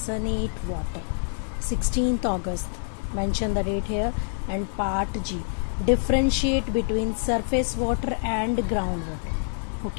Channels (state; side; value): silent; right; digital silence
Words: 8 water, 16th August, mention the date here. And part G, differentiate between surface water and ground water.